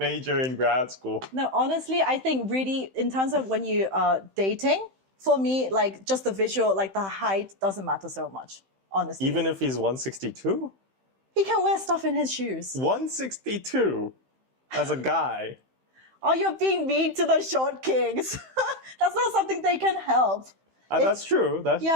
in grad school. No, honestly, I think really in terms of when you are dating, for me, like just the visual, like the height doesn't matter so much, honestly. Even if he's 162? He can wear stuff in his shoes. 162 as a guy. Oh, you're being mean to the short kings. That's not something they can help. That's true. That's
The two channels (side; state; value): left; late; 15 ms